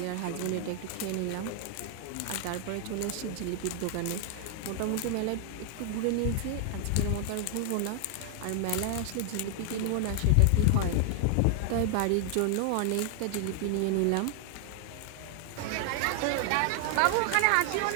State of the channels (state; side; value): different; both; correlation 0.00